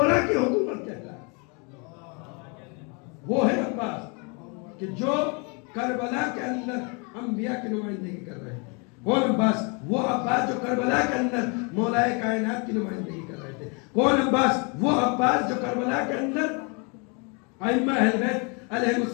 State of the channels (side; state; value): right; quieter; 33.4 dB